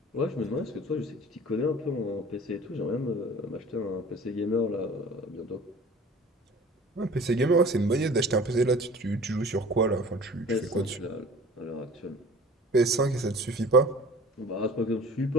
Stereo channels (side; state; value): both; normal; correlation 0.44